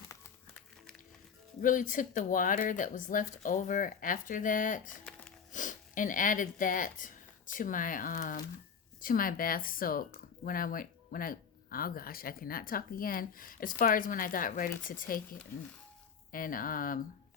really took the water that was left over after that and added that to my bath soak when I oh gosh, I cannot talk again. As far as when I got ready to take it and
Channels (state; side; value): quieter; right; 6.6 dB